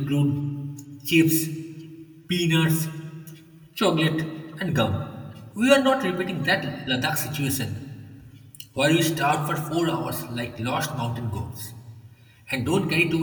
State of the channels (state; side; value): identical; both; correlation 1.00